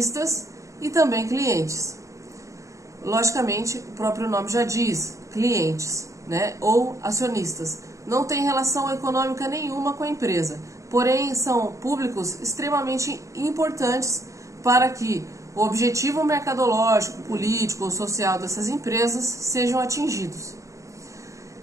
e também clientes. Logicamente, o próprio nome já diz, clientes, né, ou acionistas. Não tem relação econômica nenhuma com a empresa, porém são públicos extremamente importantes para que o objetivo mercadológico, político ou social dessas empresas sejam atingidos.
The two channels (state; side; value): late; left; 0.15 ms